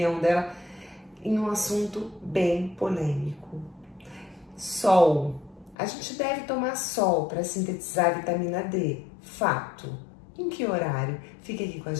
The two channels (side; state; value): right; drops out; at 5.8 s